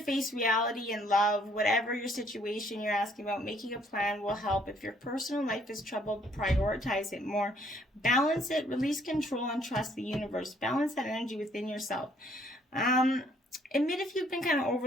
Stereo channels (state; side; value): normal; both; correlation 0.64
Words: face reality and love. Whatever your situation you're asking about, making a plan will help. If your personal life is troubled, prioritize it more. Balance it, release control, and trust the universe. Balance that energy within yourself. Admit if you've been kind of